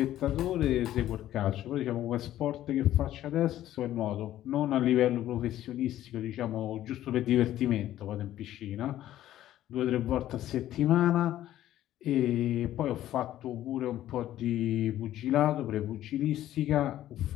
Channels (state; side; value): quieter; right; 13.1 dB